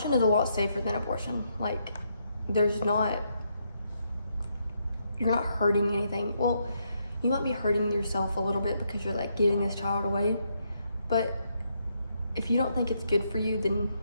is a lot safer than abortion. Like, you're not hurting anything. Well, you might be hurting yourself a little bit because you're like giving this child away, but if you don't think it's good for you, then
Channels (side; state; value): both; inverted; correlation -0.77